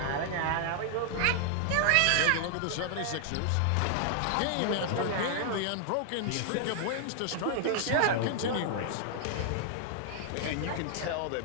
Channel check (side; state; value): both; different; correlation 0.00